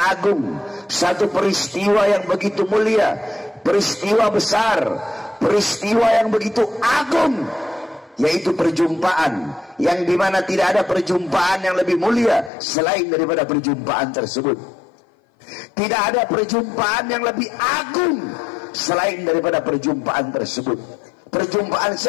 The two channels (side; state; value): right; drops out; at 12.5 s